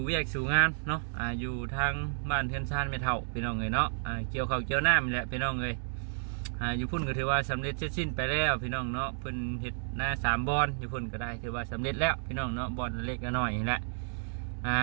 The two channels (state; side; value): silent; left; digital silence